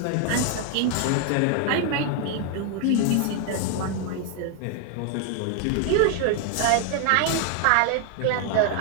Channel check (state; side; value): different; both; correlation 0.00